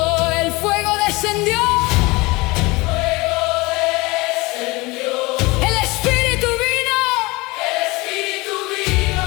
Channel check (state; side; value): quieter; right; 23.3 dB